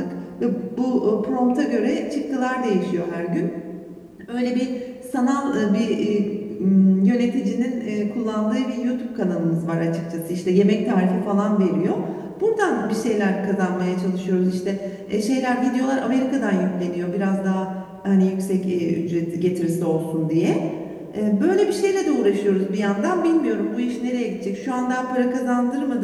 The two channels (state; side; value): identical; both; correlation 1.00